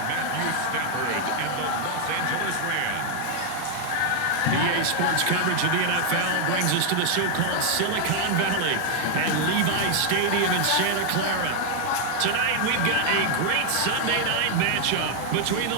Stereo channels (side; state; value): both; different; correlation 0.00